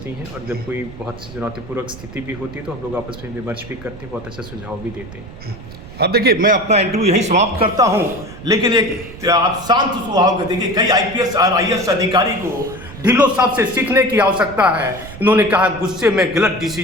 हैं, और जब कोई बहुत चुनौतीपूर्वक स्थिति भी होती है तो हम लोग आपस में विमर्श भी करते हैं, बहुत अच्छा सुझाव भी देते हैं। अब देखिए, मैं अपना इंटरव्यू यहीं समाप्त करता हूं, लेकिन एक आप शांत स्वभाव के देखिए, कई IPS और IAS अधिकारी को ढिल्लों साहब से सीखने की आवश्यकता है। इन्होंने कहा गुस्से में गलत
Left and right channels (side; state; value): right; noise; rumble, 15 dB below the sound